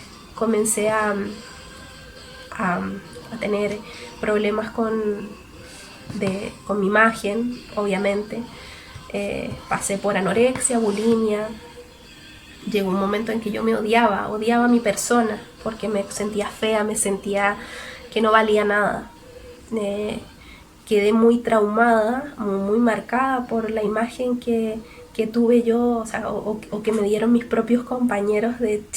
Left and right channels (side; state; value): both; identical; correlation 1.00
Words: Comencé a tener problemas con mi imagen, obviamente. Pasé por anorexia, bulimia. Llegó un momento en que yo me odiaba a mi persona, porque me sentía fea, me sentía que no valía nada. Quedé muy traumada, muy marcada por la imagen que tuve yo, o sea, o que me dieron mis propios compañeros de